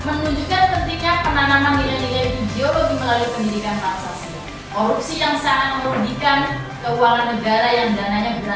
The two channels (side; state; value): both; identical; correlation 1.00